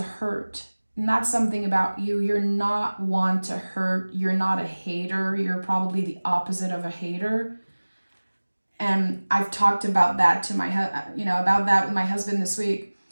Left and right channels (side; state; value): both; inverted; correlation -1.00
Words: hurt. And that's something about you. You're not one to hurt. You're not a hater. You're probably the opposite of a hater. And I've talked about that to about that with my husband this week.